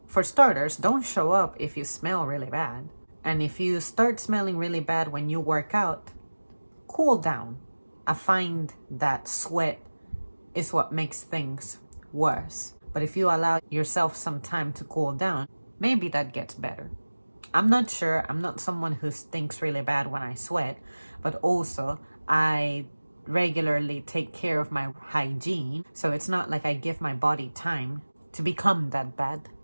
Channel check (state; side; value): inverted; both; correlation -1.00